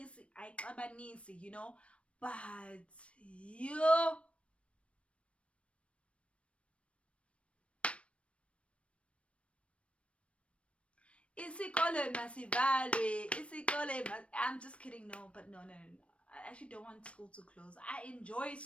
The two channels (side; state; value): right; late; 0.061 ms